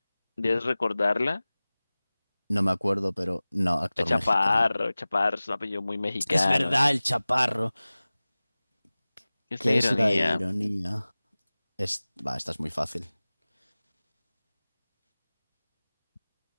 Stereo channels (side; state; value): both; inverted; correlation -0.99